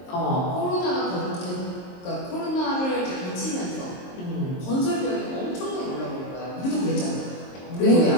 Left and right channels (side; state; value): right; late; 22 ms